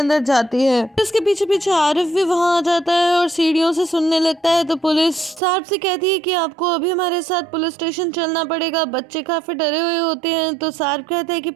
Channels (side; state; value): left; drops out; at 5.4 s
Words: जाती है। इसके पीछे पीछे आरिफ भी वहाँ आ जाता है और सीढ़ियों से सुनने लगता है। तो पुलिस सारप से कहती है कि आपको अभी हमारे साथ पुलिस स्टेशन चलना पड़ेगा। बच्चे काफी डरे हुए होते हैं। तो सारप कहता है कि